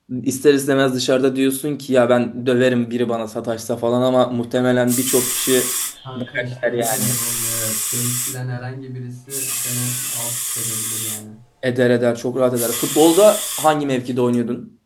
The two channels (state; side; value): identical; both; correlation 1.00